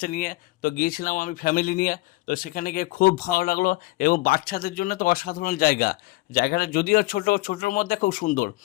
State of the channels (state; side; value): quieter; right; 20.9 dB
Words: নিয়ে। তো গিয়েছিলাম আমি ফ্যামিলি নিয়ে। তো সেখানে গিয়ে খুব ভালো লাগলো এবং বাচ্চাদের জন্য তো অসাধারণ জায়গা। জায়গাটা যদিও ছোটোর মধ্যে খুব সুন্দর।